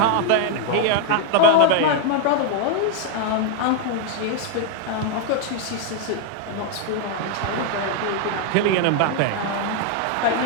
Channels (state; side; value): different; both; correlation 0.00